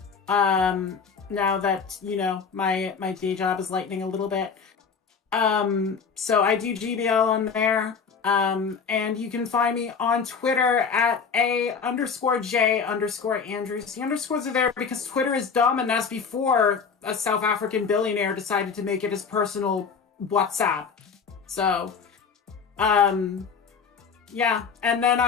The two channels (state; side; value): quieter; right; 5.9 dB